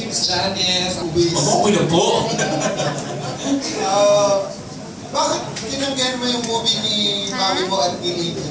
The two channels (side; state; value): both; identical; correlation 1.00